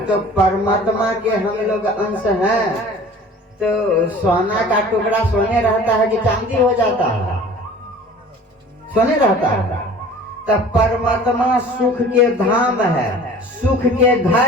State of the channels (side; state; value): both; normal; correlation 0.45